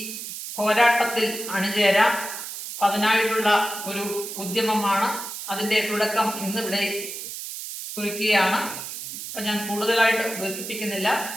പോരാട്ടത്തിൽ അണിചേരാം. അതിനായിട്ടുള്ള ഒരു ഉദ്യമമാണ്. അതിന്റെ തുടക്കം ഇന്നിവിടെ കുറിക്കുകയാണ്. അപ്പൊ ഞാൻ കൂടുതലായിട്ട് ദീർഘിപ്പിക്കുന്നില്ല,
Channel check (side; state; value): right; noise; hiss, 8 dB below the sound